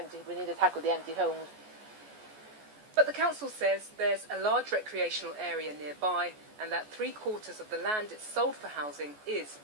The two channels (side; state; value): left; late; 14 ms